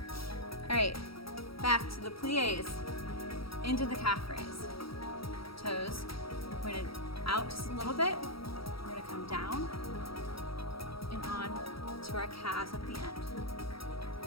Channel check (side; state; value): right; late; 0.75 ms